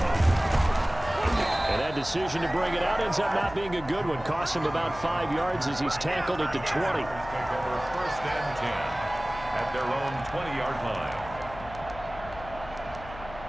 And that decision to bring it out ends up not being a good one. Cost him about 5 yards as he's tackled at the 20. Take over 1st and 10 at their own 20-yard line.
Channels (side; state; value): left; noise; hum, 15 dB below the sound